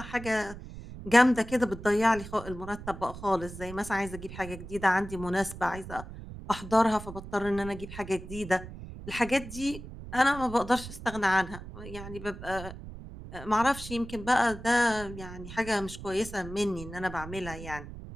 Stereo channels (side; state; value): right; noise; rumble, 12 dB below the sound